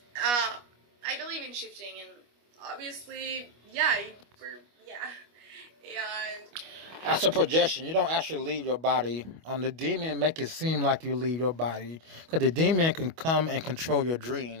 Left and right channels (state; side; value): late; left; 25 ms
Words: I believe in shifting, and obviously, and that's a projection. You don't actually leave your body. The demon make it seem like you leave your body, because the demon can come and control your